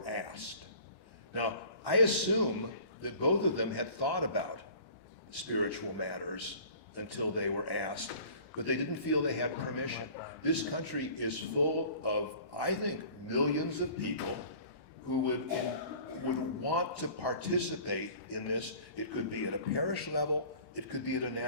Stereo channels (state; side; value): late; right; 1.1 ms